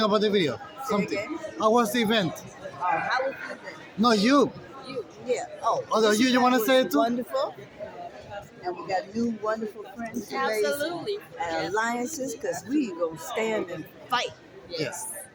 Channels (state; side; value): identical; both; correlation 1.00